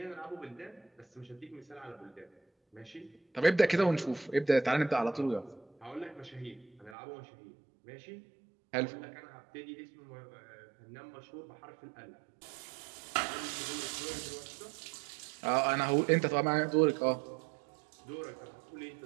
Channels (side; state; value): left; drops out; at 7.0 s